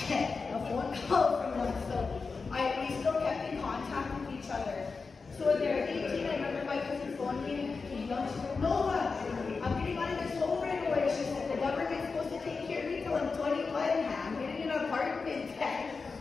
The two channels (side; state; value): right; quieter; 4.5 dB